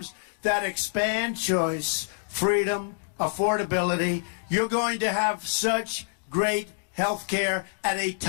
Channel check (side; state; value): right; silent; digital silence